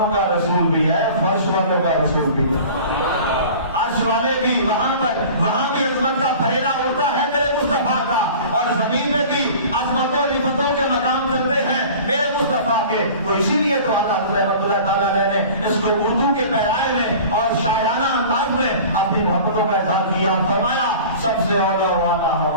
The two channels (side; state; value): both; inverted; correlation -0.41